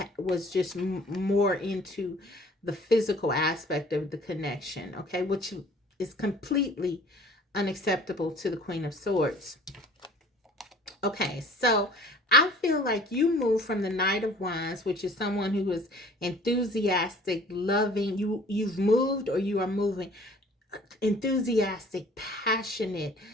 was just more into the physical aspect of the connection, okay, which is completely unacceptable to the Queen of Swords. Okay, so I feel like you move from the Knight of Wands, which is someone who is enthusiastic, loving. You've moved, or you are moving, enthusiastic, passionate,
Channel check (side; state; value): both; normal; correlation 0.51